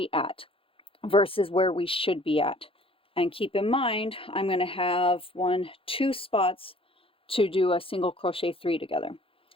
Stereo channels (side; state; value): right; late; 0.27 ms